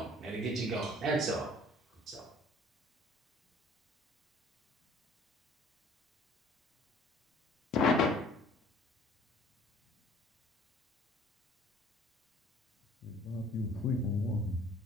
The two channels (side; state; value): both; normal; correlation 0.54